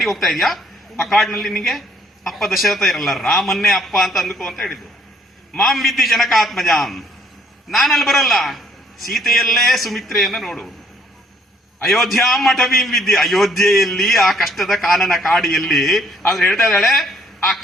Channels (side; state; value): both; normal; correlation 0.65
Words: ಹೋಗ್ತಾ ಇದೀಯಾ, ಆ ಕಾಡಿನಲ್ಲಿ ನಿನಗೆ ಅಪ್ಪ ದಶರಥ ಇರಲ್ಲ, ರಾಮನ್ನೇ ಅಪ್ಪ ಅಂತ ಅಂದ್ಕೋ ಅಂತ ಹೇಳಿದ್ರು. ಮಾಂ ವಿದ್ಯೆ ಜನಕಾತ್ಮಜಾಂ, ನಾನಲ್ಲಿ ಬರಲ್ಲ, ಸೀತೆಯಲ್ಲೇ ಸುಮಿತ್ರೆಯನ್ನ ನೋಡು. ಅಯೋಧ್ಯಾಂ ಅಟವೀಂ ವಿದ್ಯೆ, ಅಯೋಧ್ಯೆಯಲ್ಲಿ ಆ ಕಷ್ಟದ ಕಾನನ ಕಾಡಿಯಲ್ಲಿ. ಆದ್ರೆ ಹೇಳ್ತಾ ಇದ್ದಾಳೆ, ಆ